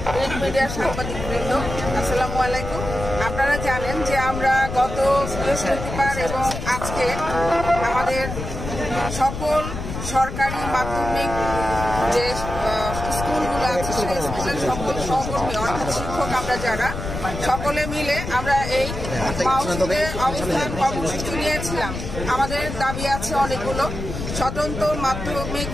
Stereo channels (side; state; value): left; noise; rumble, 7 dB below the sound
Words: প্রিন্ট মিডিয়ার সাংবাদিকবৃন্দ, আসসালামু আলাইকুম। আপনারা জানেন যে আমরা গত বৃহস্পতিবার এবং আজকে আমাদের সকল সরকারি মাধ্যমিক যে স্কুলগুলো আছে সেই স্কুলের সকল সহকর্মী অর্থাৎ শিক্ষক আমরা যারা সকলে মিলে আমরা এই মাউসিতে অবস্থান কর্মসূচি নিয়েছিলাম। আমাদের দাবি আছে অনেকগুলো। স্বতন্ত্র মাধ্যমিক